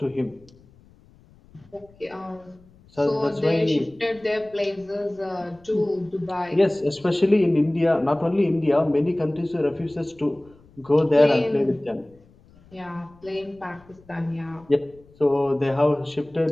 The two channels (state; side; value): noise; left; rumble, 28 dB below the sound